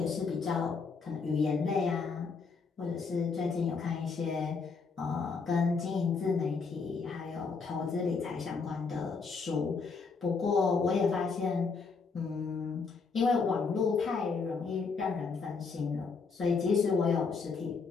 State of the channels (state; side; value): quieter; right; 4.9 dB